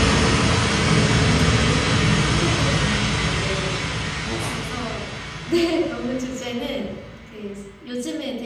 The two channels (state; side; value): identical; both; correlation 1.00